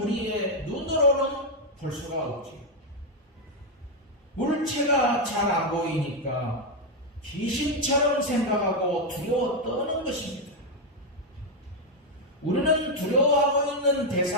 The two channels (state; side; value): normal; both; correlation 0.02